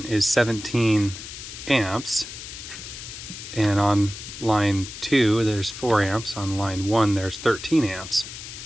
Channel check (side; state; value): left; noise; hiss, 11 dB below the sound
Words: is 17 amps. And on line 2, there's 4 amps. On line 1, there's 13 amps.